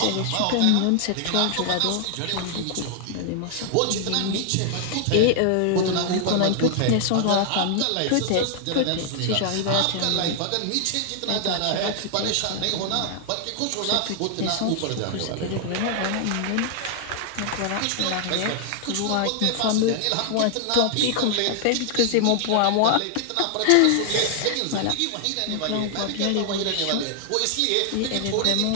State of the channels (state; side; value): different; both; correlation 0.00